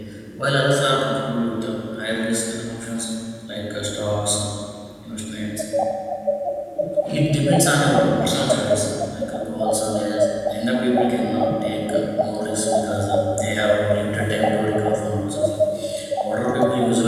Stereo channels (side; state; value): both; identical; correlation 1.00